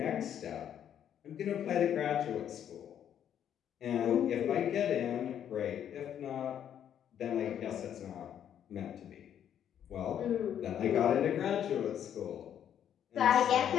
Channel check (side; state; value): right; quieter; 9.6 dB